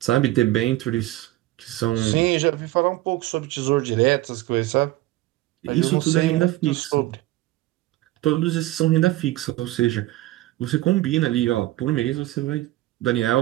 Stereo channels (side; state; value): left; quieter; 17.0 dB